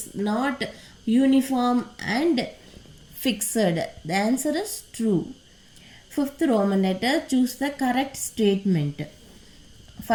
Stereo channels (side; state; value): both; identical; correlation 1.00